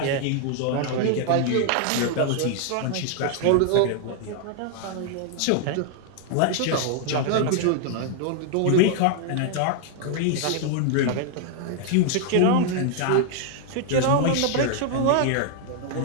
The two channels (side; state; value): both; different; correlation 0.00